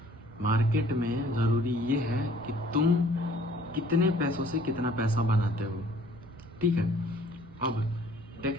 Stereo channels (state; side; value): normal; both; correlation 0.56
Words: मार्केट में ज़रूरी ये है कि तुम कितने पैसों से कितना पैसा बनाते हो, ठीक है। अब